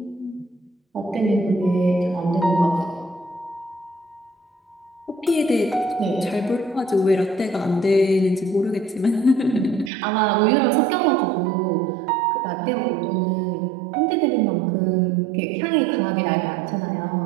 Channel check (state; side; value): drops out; left; at 9.9 s